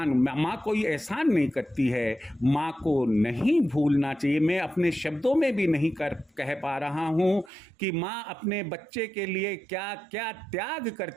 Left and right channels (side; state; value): left; drops out; at 7.5 s